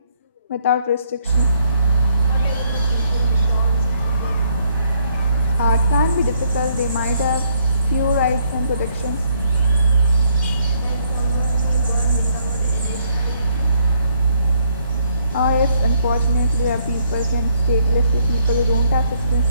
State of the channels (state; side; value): inverted; both; correlation -0.70